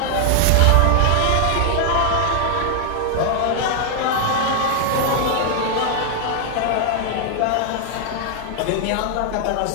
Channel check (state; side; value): different; both; correlation 0.00